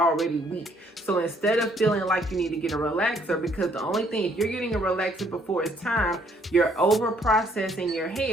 weak. So instead of feeling like you need to get a relaxer, because the only thing, if you're getting a relaxer before it's time, you're over processing your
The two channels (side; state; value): both; normal; correlation 0.66